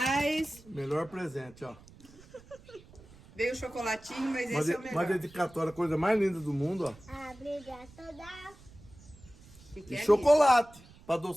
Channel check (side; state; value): right; noise; rumble, 23 dB below the sound